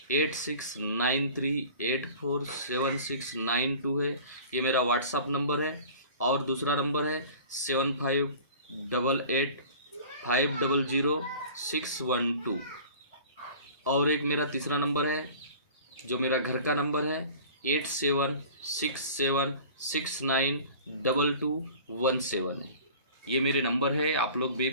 8693847692 है। ये मेरा व्हाट्सअप नंबर है। और दूसरा नंबर है 7588500612। और एक मेरा तीसरा नंबर है जो मेरा घर का नंबर है 8767692217। ये मेरे नंबर है। आप लोग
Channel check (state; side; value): inverted; both; correlation -0.43